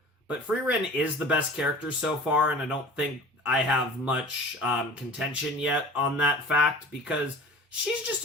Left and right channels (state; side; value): normal; both; correlation 0.41